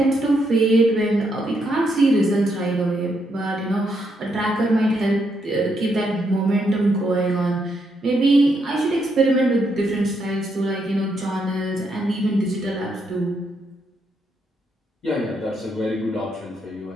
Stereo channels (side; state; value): both; normal; correlation 0.78